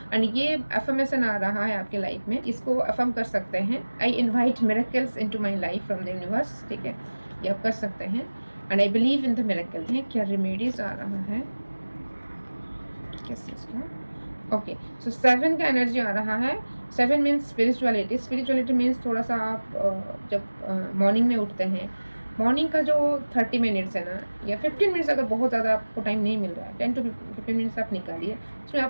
एंड ये अफर्मेशन आ रहा है आपके लाइफ में, इसको अफर्म कर सकते हैं, I invite miracles into my life from the universe, ठीक है, ये आप कर सकते हैं। And I believe in the miracle है। क्या रेमेडीज आ रहा है किस चीज़ का? ओके, सो 7 का एनर्जी आ रहा है। 7 मीन्स स्पिरिचुअलिटी। स्पिरिचुअलिटी मीन्स थोड़ा सा आप जब मॉर्निंग में उठते हैं, मॉर्निंग का जो 30 मिनट्स है ना, या 15 मिनट्स, अगर बहुत ज़्यादा आपको टाइम नहीं मिल रहा है, 10 to 15 मिनट्स आप निकालिए, उसमें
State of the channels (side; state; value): both; inverted; correlation -1.00